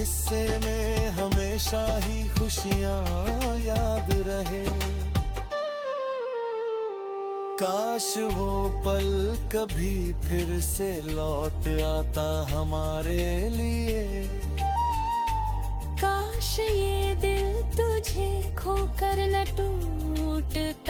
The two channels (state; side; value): identical; both; correlation 1.00